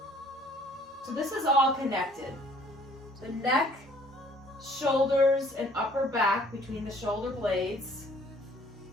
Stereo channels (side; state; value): both; normal; correlation 0.57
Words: So this is all connected. The neck, shoulders, and upper back between the shoulder blades,